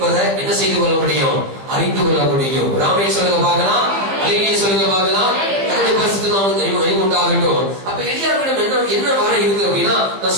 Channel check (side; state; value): left; late; 16 ms